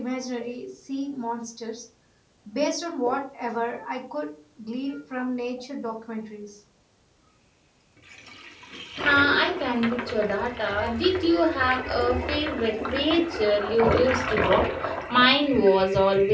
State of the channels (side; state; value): both; identical; correlation 1.00